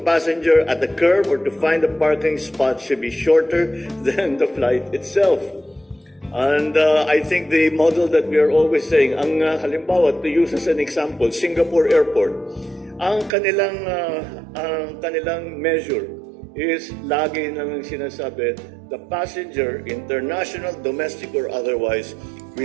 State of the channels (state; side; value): drops out; left; at 13.3 s